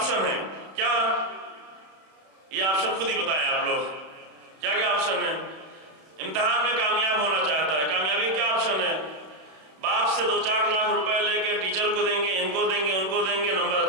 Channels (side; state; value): left; late; 32 ms